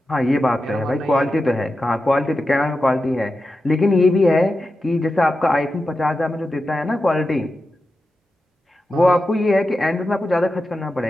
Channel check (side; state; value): both; normal; correlation 0.91